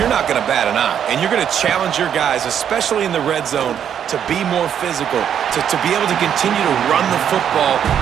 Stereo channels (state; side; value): quieter; left; 8.9 dB